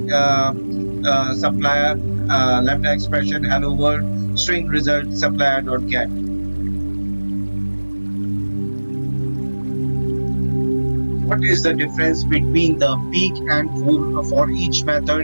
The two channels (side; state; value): both; inverted; correlation -1.00